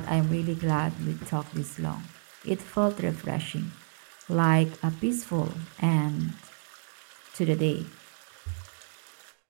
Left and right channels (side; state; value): left; silent; digital silence